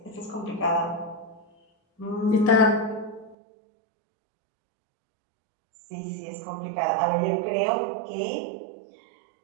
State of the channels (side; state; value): left; drops out; at 3.4 s